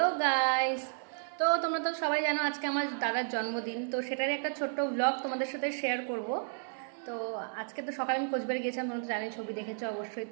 guys, তো তোমরা তো সবাই জানো আজকে আমার দাদার জন্মদিন, তো সেটারই একটা ছোট্ট ব্লগ তোমাদের সাথে শেয়ার করব। তো আজকে তো সকালে আমি কোচবিহারে গিয়েছিলাম, তোমরা তো জানি, ছবি দেখেছো অবশ্যই।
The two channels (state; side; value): silent; left; 56 dB below the other